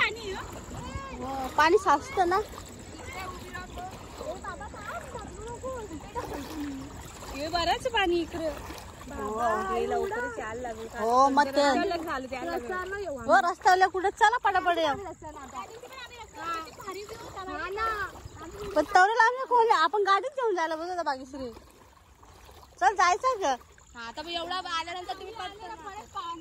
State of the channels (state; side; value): identical; both; correlation 1.00